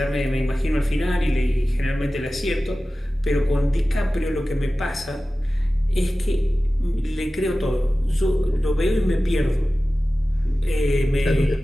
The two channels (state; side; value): normal; both; correlation 0.95